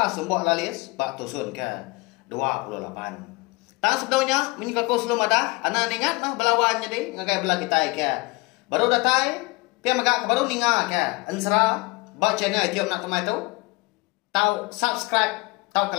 Sumbok Lalis bak tusun ke 28. Tak sebelumnya menyikaku sebelum ada anak ingat mah belawan jadi ngagai belah kita ke baru datai pia magak baru ninga ke Ansara bak channel YouTube anak temuai tu tahu subscribe tahu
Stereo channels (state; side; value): quieter; right; 25.1 dB